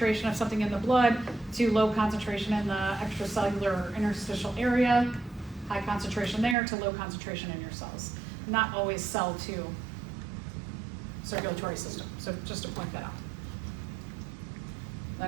of something in the blood, to low concentration in the extracellular or interstitial area, high concentration there to low concentration in your cells. Not always cell to circulatory system, so just to point that out.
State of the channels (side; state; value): left; drops out; at 6.6 s